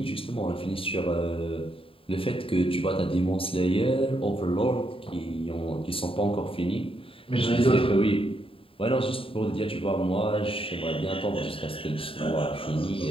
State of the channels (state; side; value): late; right; 0.26 ms